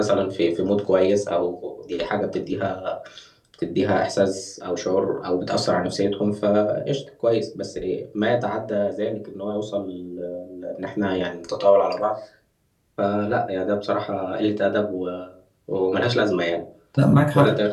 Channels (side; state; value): both; identical; correlation 1.00